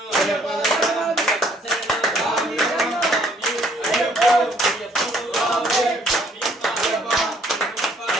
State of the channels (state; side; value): normal; both; correlation 0.63